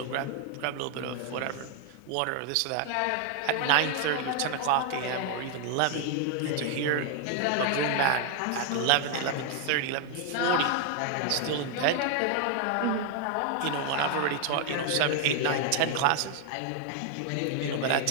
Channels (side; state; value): both; different; correlation 0.01